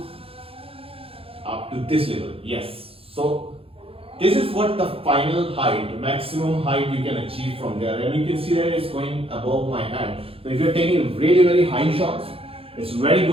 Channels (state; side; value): late; left; 0.27 ms